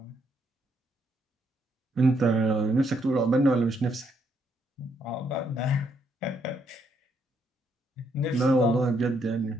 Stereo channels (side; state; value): both; normal; correlation 0.74